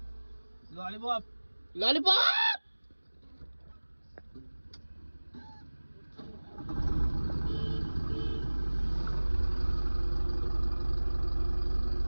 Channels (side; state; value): both; inverted; correlation -1.00